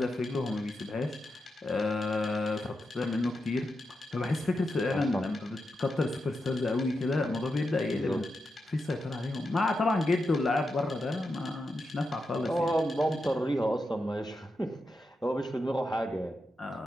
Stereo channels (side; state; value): both; normal; correlation 0.87